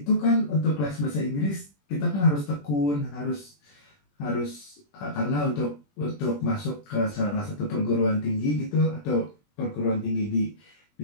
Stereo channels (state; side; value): late; right; 20 ms